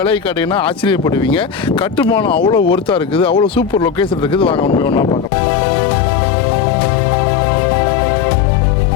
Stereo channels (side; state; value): right; drops out; at 5.3 s